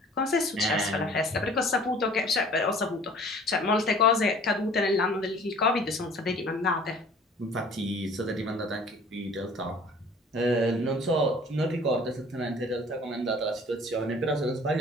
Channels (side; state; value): both; normal; correlation 0.50